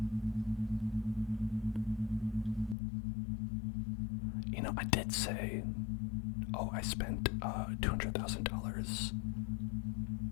You know, I did say, I spent $200,000,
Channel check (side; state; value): right; drops out; at 2.8 s